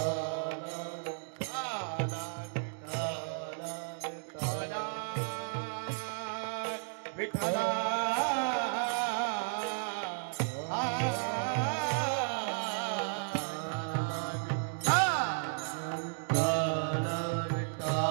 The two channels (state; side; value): silent; left; digital silence